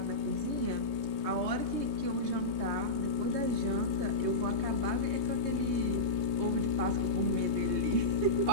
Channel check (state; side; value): late; left; 3.2 ms